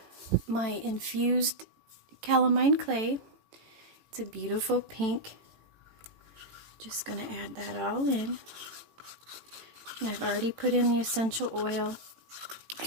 my infused calamine clay. It's a beautiful pink. Just going to add that all in. And I've already put in the essential oil,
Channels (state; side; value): late; left; 18 ms